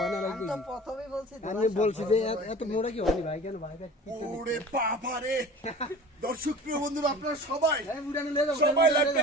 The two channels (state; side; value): normal; both; correlation 0.41